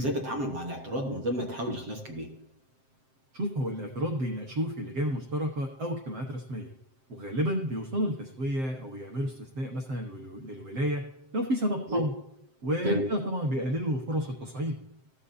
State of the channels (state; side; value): late; left; 7.6 ms